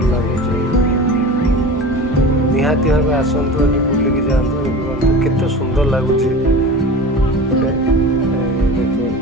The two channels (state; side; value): normal; both; correlation 0.34